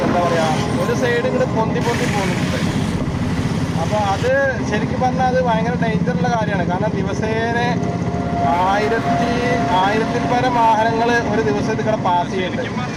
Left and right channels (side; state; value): both; identical; correlation 1.00